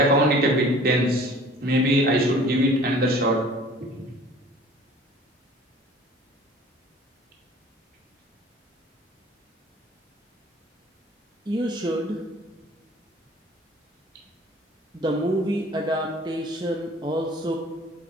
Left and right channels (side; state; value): both; normal; correlation 0.49